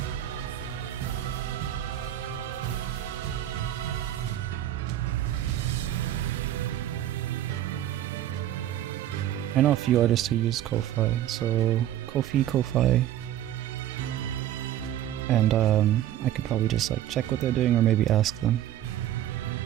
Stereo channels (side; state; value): left; quieter; 12.2 dB